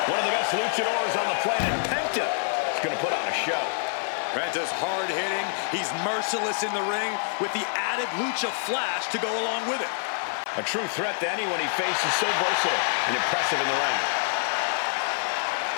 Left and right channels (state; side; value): silent; right; 61 dB below the other